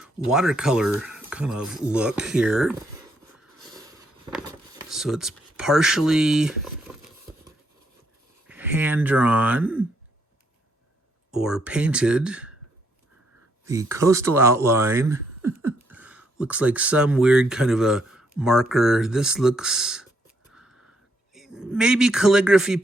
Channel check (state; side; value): normal; both; correlation 0.73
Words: watercolor kind of look here. So it's partially hand-drawn or painted. The coastal outline looks like some weird kind of a marker. This looks maybe calligraphy